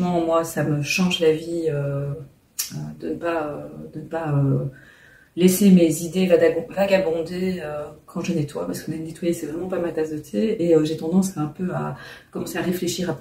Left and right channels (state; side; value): identical; both; correlation 1.00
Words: moi, ça me change la vie de ne pas laisser mes idées vagabonder quand je nettoie, parce que nettoyer, c'est vraiment pas ma tasse de thé, et j'ai tendance un peu à commencer à réfléchir à